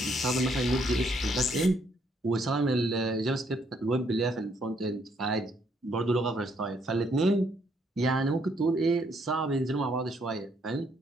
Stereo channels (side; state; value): both; normal; correlation 0.70